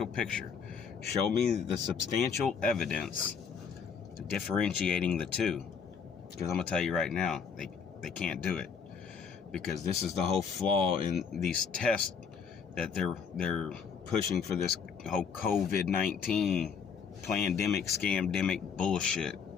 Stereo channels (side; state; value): right; quieter; 6.4 dB